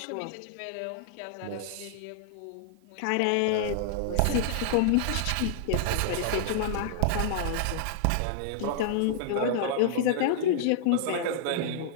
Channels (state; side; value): different; both; correlation -0.01